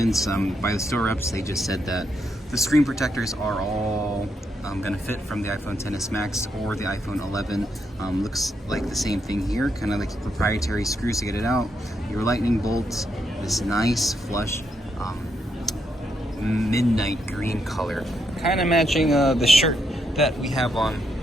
By the store reps, they just said that the screen protectors are all gonna fit from the iPhone XS Max or the iPhone 11. Looks like the same thing here, kind of like proprietary screws to get it out. Your lightning bolts, this nice flush midnight green color, kind of matching the shirt that we have on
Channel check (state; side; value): normal; both; correlation 0.79